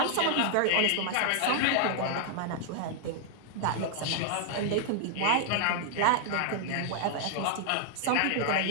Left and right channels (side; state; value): both; different; correlation 0.00